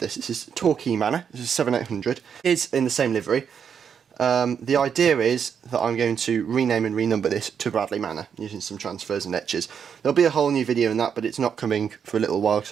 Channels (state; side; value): quieter; left; 7.4 dB